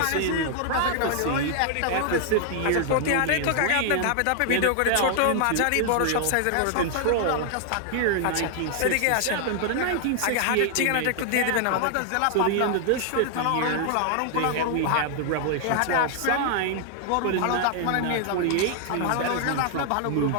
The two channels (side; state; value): both; different; correlation 0.00